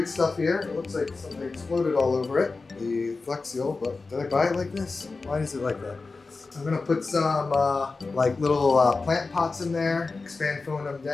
stuff here. It looks like something exploded all over it, the Flex Seal, but did I buy it like this? Why is it like that? I'm gonna put some like little plant pots in there, expand foam them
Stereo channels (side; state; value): right; quieter; 3.9 dB